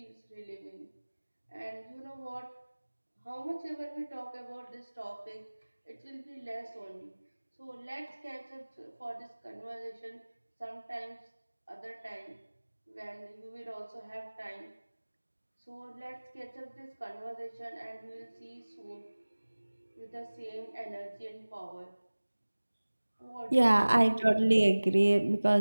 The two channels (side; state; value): both; inverted; correlation -1.00